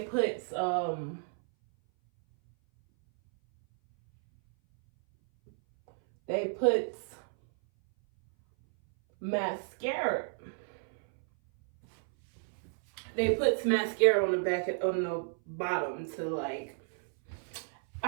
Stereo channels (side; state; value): left; silent; 57 dB below the other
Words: put mascara. They put mascara on the bottom to, like,